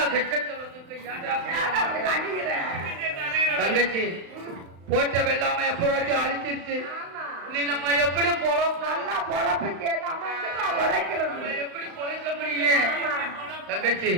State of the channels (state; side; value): late; left; 35 ms